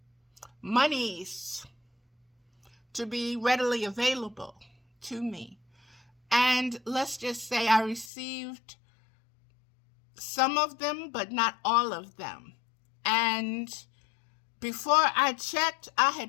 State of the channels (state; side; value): drops out; right; at 8.1 s